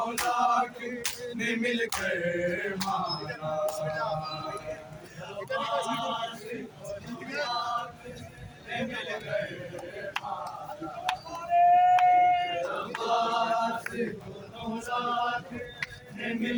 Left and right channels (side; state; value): both; identical; correlation 1.00